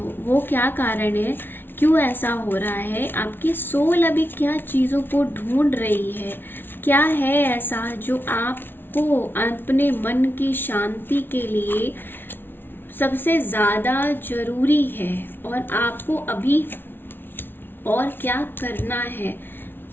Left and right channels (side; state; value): right; late; 0.10 ms